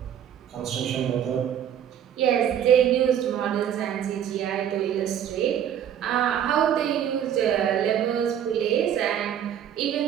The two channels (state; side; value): quieter; left; 9.6 dB